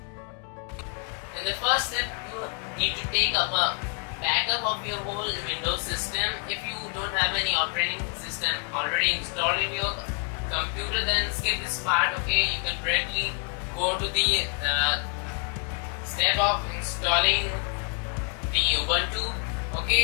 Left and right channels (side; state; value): right; quieter; 38.9 dB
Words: In the first step, you need to take up a backup of your whole Windows system. If you don't have any operating system already installed in your computer, then skip this part. Okay, you can directly go to the step of installing the Ubuntu.